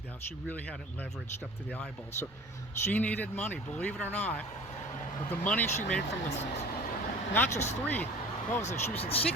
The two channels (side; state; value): both; normal; correlation 0.42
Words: out, she really had it leveraged up to the eyeballs. So she needed money, believe it or not. But the money she made from not just three, she was in